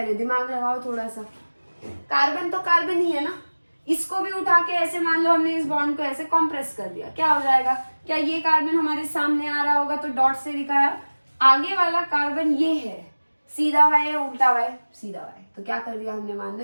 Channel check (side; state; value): both; inverted; correlation -1.00